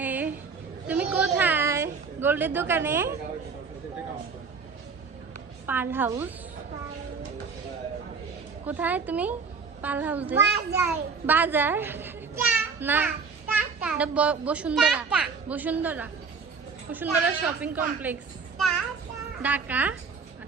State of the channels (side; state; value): left; quieter; 5.1 dB